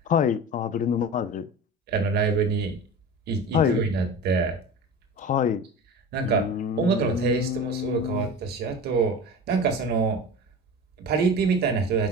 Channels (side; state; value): both; normal; correlation 0.32